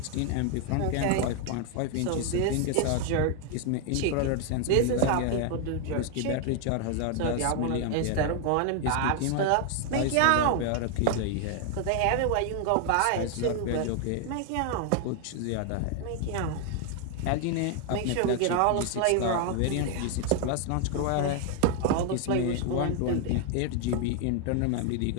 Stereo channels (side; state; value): both; different; correlation 0.00